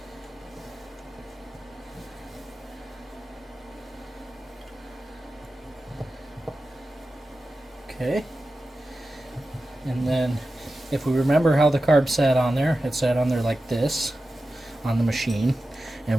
Okay. And then if we remember how the carb sat on there, it sat on there like this on the machine.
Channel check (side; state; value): both; normal; correlation 0.93